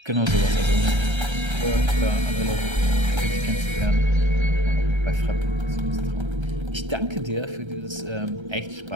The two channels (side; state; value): left; late; 1.3 ms